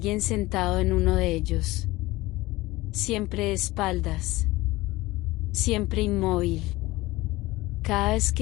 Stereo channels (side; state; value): right; quieter; 19.6 dB